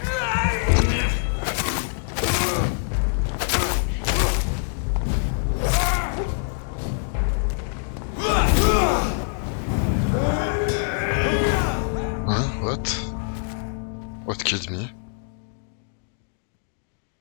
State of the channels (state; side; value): silent; right; digital silence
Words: What? What killed me?